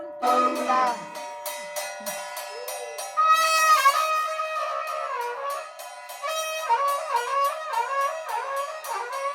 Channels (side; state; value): both; identical; correlation 1.00